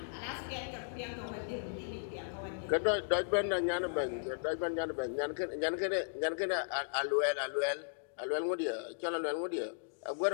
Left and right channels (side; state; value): right; silent; digital silence